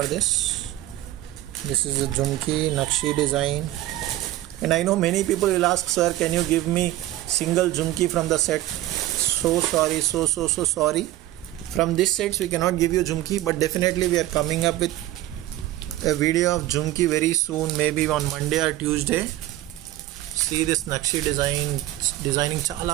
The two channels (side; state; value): left; quieter; 15.3 dB